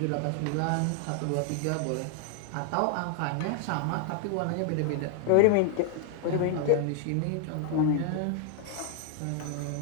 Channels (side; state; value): both; different; correlation 0.00